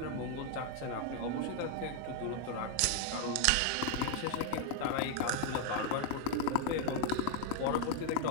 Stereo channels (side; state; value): both; different; correlation 0.00